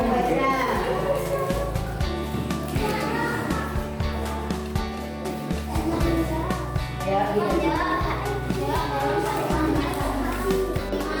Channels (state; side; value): identical; both; correlation 1.00